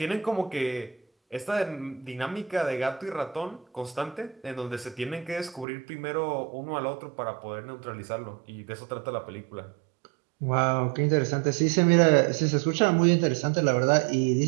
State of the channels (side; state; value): left; drops out; at 5.7 s